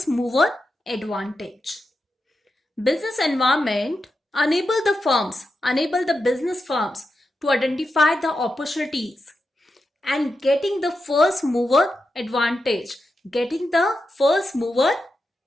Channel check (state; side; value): normal; both; correlation 0.88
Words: mover advantage. Business environment enable the business firms to identify the opportunities and getting the first mover advantage, getting the first mover